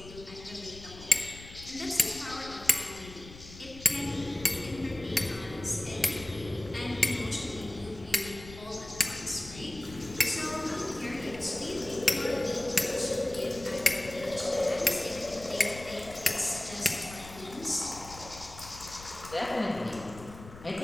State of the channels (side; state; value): left; noise; rumble, 16 dB below the sound